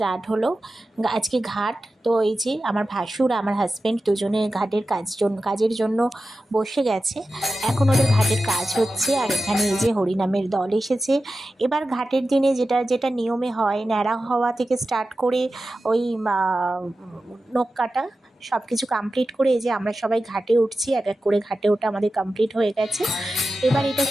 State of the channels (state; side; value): normal; both; correlation 0.93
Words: হলো। আজকে ঘাট। তো এই যে আমার ভাসুর আমার হাজব্যান্ড দুজনে ঘাটের কাজের জন্য বসে গেছে। এখন ওদের ঘাটের কাজ হচ্ছে। আর এখানে এই যে হরিনামের দল এসেছে। এবার ঘাটের দিনে যেটা যেটা নিয়মে হয়, ন্যাড়া হওয়া থেকে স্টার্ট করে ওই নখ কাটা সব কিছু কমপ্লিট করে এই যে আমরা সবাই ঘাটে উঠছি। এক এক করে ঘাটে ওঠা আমাদের কমপ্লিট হয়ে গেছে। এবার এটা